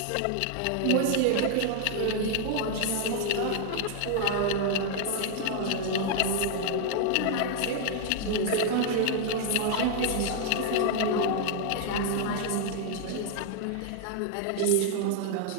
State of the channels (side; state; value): both; different; correlation 0.00